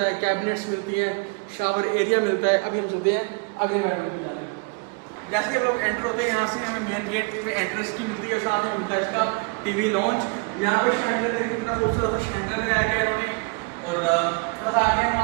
है, कैबिनेट्स मिलती है, शावर एरिया मिलता है। अभी हम चलते हैं अगले बेडरूम में जाते हैं। जैसे ही हम लोग एंटर होते हैं यहाँ से हमें मेन गेट में एंट्रेंस की मिलती है, साथ में मिलता है इसका टीवी लॉन्च। यहाँ पर शैंडलियर देखिए कितना खूबसूरत शैंडलियर लगाया गया इन्होंने। और बस आगे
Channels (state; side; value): quieter; left; 31.3 dB